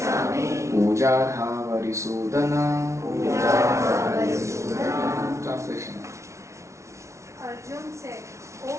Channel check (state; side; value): late; left; 0.14 ms